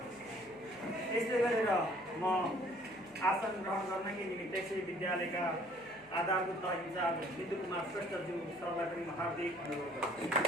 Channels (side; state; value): left; noise; hum, 29 dB below the sound